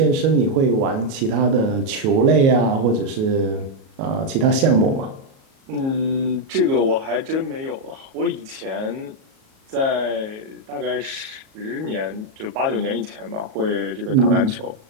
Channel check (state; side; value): late; left; 37 ms